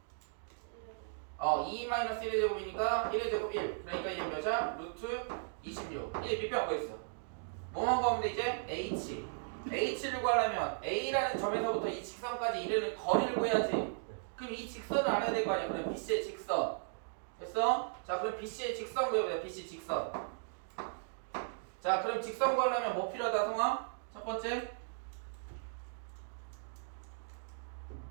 2 마이너스 1의 제곱이니까 1의 제곱 1. 그러니까 이게 몇이야? 루트 26. 이제 밑변 구했어. 뭐만 구하면 돼 이제? H를 구하려면 A라는 점에서부터 이 직선까지 이르는 거리를 구해야지. 그럼 이 직선을 알아야 될 거 아니야. 그럼 BC의 직선. 됐어? 자, 그럼 BC의 직선 구해보자. BC 직선. 자, 그럼 직선 구하려면 뭐 필요하다, 성아? 첫 번째?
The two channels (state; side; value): silent; left; digital silence